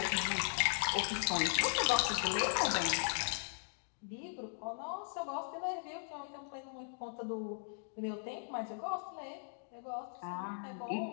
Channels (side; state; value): right; silent; digital silence